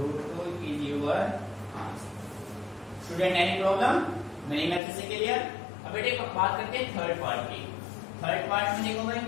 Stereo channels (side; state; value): right; drops out; at 4.8 s